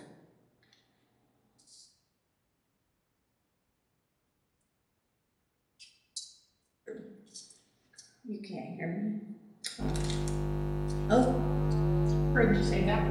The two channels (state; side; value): identical; both; correlation 1.00